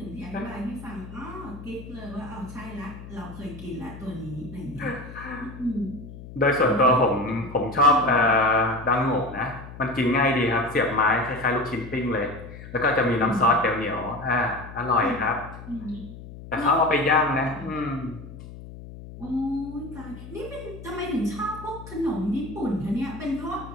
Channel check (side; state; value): left; noise; hum, 14 dB below the sound